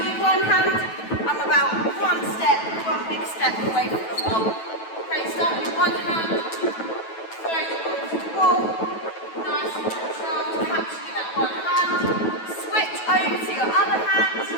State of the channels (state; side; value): late; right; 9.2 ms